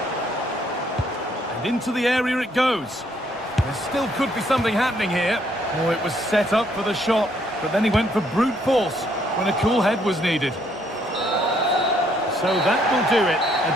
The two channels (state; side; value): normal; both; correlation 0.69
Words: And into the area it goes. There still could be something happening here. Oh, it was set up for the shot, but then he went for brute force when a cool head was needed. So that will do it.